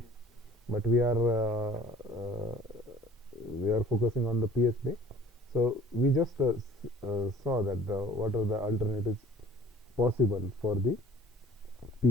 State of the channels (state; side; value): normal; both; correlation 0.49